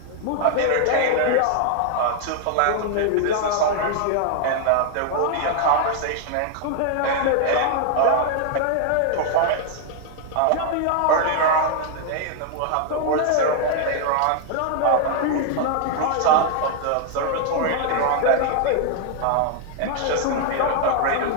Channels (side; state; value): both; different; correlation 0.00